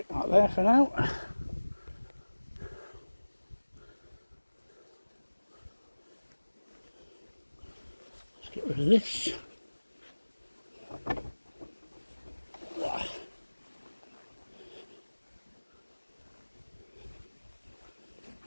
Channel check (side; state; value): both; inverted; correlation -1.00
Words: that there for now. Let's get rid of this.